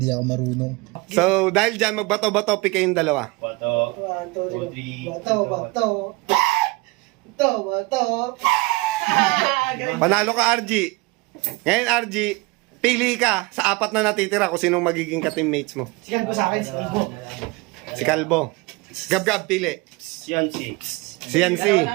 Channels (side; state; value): left; quieter; 24.7 dB